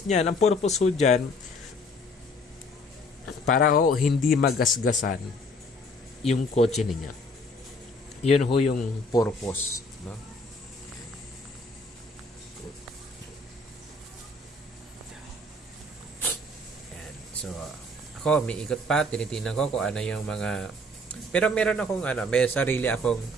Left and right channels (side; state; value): both; normal; correlation 0.57